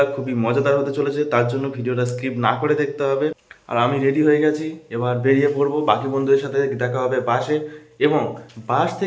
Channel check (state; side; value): identical; both; correlation 1.00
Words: খুবই মজাদার হতে চলেছে, তার জন্য ভিডিওটা স্কিপ না করে দেখতে হবে। আর আমি রেডি হয়ে গেছি, এবার বেরিয়ে পড়বো। বাকি বন্ধুদের সাথে দেখা হবে বাসে, এবং বাস